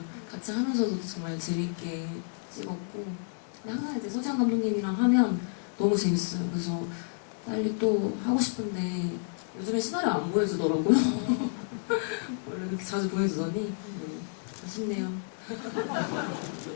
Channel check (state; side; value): silent; right; 58 dB below the other